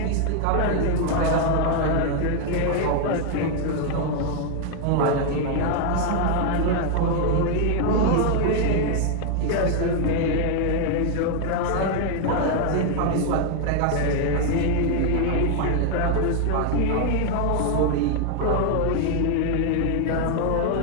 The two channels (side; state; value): both; different; correlation 0.00